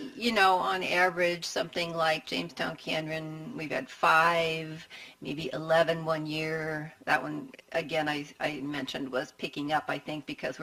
on average, something like Jamestown Canyon, we've had 5, maybe 11 one year. That one, again, I mentioned was picking up, I think, because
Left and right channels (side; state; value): both; identical; correlation 1.00